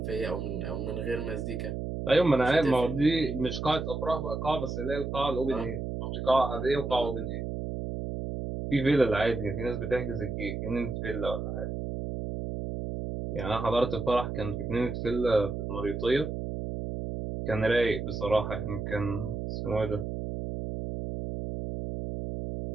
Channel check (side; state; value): right; noise; hum, 4 dB below the sound